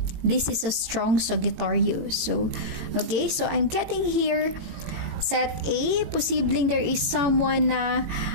this is a strong Sagittarius. So, okay, so I'm getting here Set A, posibleng there is someone na,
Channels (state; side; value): late; left; 18 ms